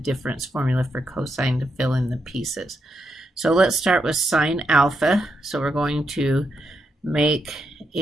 formula for cosine to fill in the pieces. So let's start with sine alpha. So we're going to make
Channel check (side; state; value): both; normal; correlation 0.82